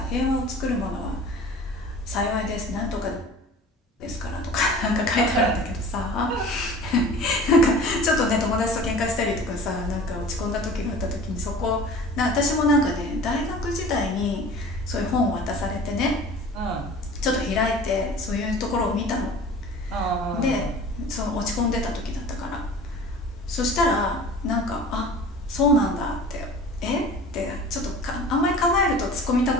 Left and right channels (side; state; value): both; normal; correlation 0.42